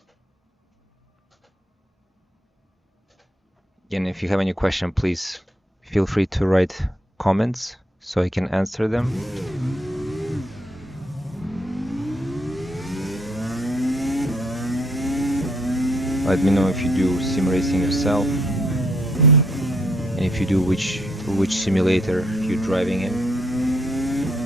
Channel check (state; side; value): normal; both; correlation 0.70